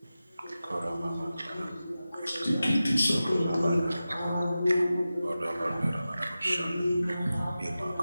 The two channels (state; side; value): inverted; both; correlation -0.94